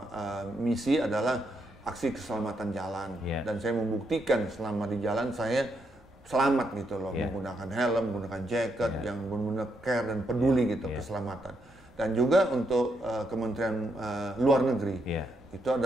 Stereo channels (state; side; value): normal; both; correlation 0.78